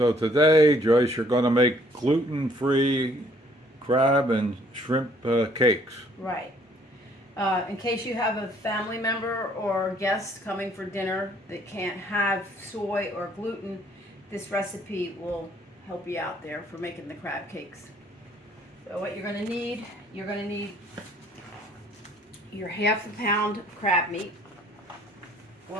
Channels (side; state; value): both; normal; correlation 0.62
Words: today, Joyce, you're going to make gluten-free crab and shrimp cakes. Right. In case you have a family member or guest coming for dinner that can't have soy or gluten, this recipe will help you out there for making the crab cakes. So what you're going to need your half a pound of crab meat,